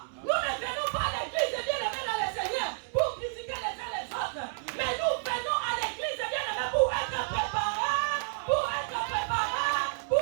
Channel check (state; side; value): silent; left; 58 dB below the other